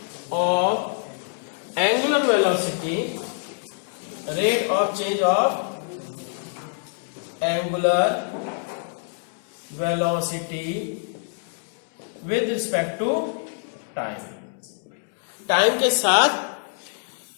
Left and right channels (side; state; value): right; silent; 62 dB below the other